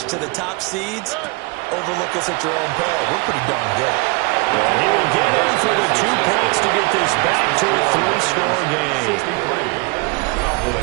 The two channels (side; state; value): left; quieter; 27.8 dB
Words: to the top seeds. Overlook us at your own peril. We're pretty darn good. And he will get in for the 2 points to get this back to a 3-score game.